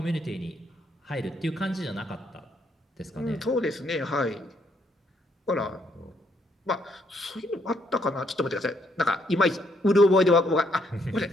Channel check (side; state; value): both; normal; correlation 0.72